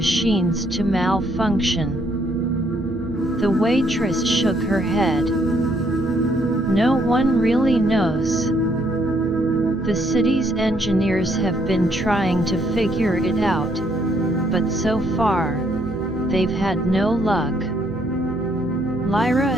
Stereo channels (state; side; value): noise; right; hum, 16 dB below the sound